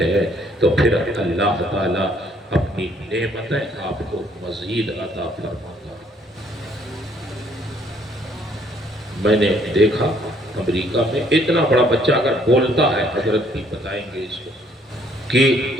ہیں تو پھر اللہ تعالیٰ اپنی نعمتیں آپ کو مزید عطا فرماتا ہے۔ میں نے دیکھا امریکہ میں اتنا بڑا بچہ اگر بولتا ہے، حضرت بھی بتائیں گے اس کو، کہ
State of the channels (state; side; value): normal; both; correlation 0.64